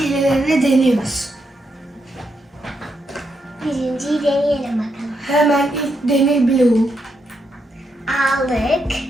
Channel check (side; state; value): both; normal; correlation 0.81